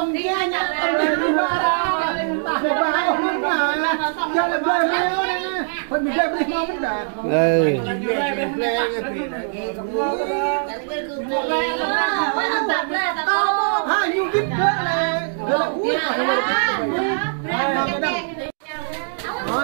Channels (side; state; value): left; silent; digital silence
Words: nhẹ nhẹ tầm đi đi ba ra. Để ba không mà cho là bơi mèo này. Phần mình chơi bơi ngon lắm đã. Ừ. Ha, nhiều kít nữa là uống nó